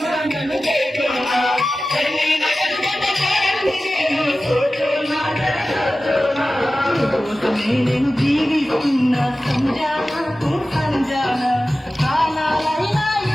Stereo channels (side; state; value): both; normal; correlation 0.95